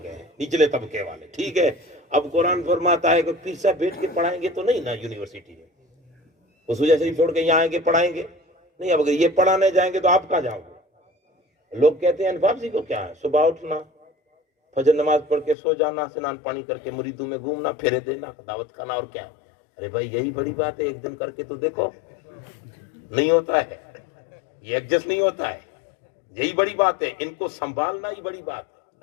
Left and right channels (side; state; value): right; drops out; at 15.6 s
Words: ہیں نچلے طبقے والے, ٹھیک ہے. اب قرآن فرماتا ہے کہ پیر صاحب بیٹھ کے پڑھائیں گے تو نہیں نا یونیورسٹی میں, وہ سوجا شریف چھوڑ کے یہاں آئیں گے پڑھائیں گے نہیں. اب اگر یہ پڑھانے جائیں گے تو آپ کہاں جاؤ گے؟ لوگ کہتے ہیں انفاف جی کو کیا ہے, صبح اٹھنا, فجر نماز پڑھ کے سو جانا, سنان پانی کر کے مریدوں میں گھومنا, پھیرے دینا, دعوت کھانا, اور کیا. ارے بھائی یہی بڑی بات ہے, ایک دن کر کے تو دیکھو. نہیں ہوتا ہے, یہ ایڈجسٹ نہیں ہوتا ہے, یہی بڑی بات ہے. ان کو سنبھالنا ہی بڑی بات